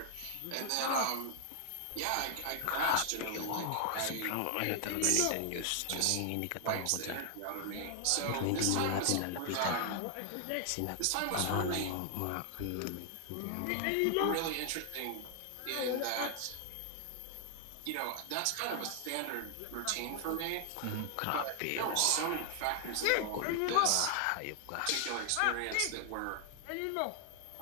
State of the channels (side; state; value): both; different; correlation 0.00